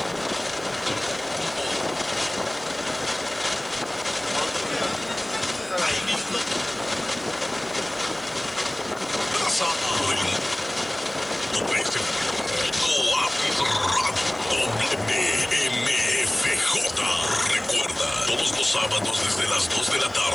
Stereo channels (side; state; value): left; noise; hiss, 27 dB below the sound